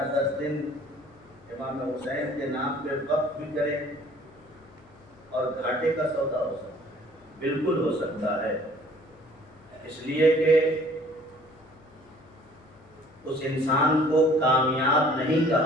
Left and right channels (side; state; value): left; noise; hum, 27 dB below the sound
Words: 10 دن امام حسین کے نام پہ وقف بھی کریں اور گھاٹے کا سودا ہو سکتا ہے. بالکل ہو سکتا ہے، اس لیے کہ اس انسان کو کامیاب نہیں